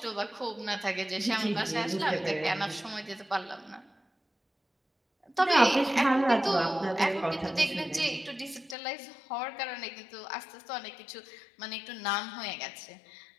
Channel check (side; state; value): right; drops out; at 8.8 s